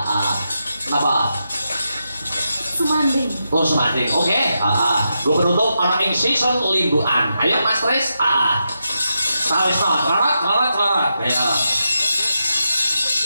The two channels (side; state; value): both; inverted; correlation -0.86